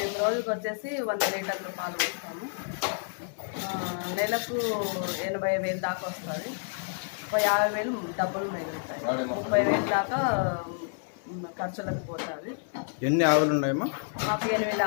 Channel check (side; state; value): right; silent; 58 dB below the other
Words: రోజుకి వచ్చేసి 100 లీటర్లు పాలు పోస్తాము. నెలకు 80,000 దాకా వస్తుంది. 50,000 డబ్బులు మిగులుతాయి. 30,000 దాకా ఖర్చులకు పోతుంది. ఎన్ని ఆవులు ఉన్నాయమ్మా? మాకు 8